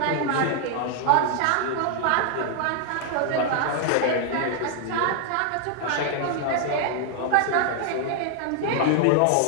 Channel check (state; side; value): different; both; correlation 0.00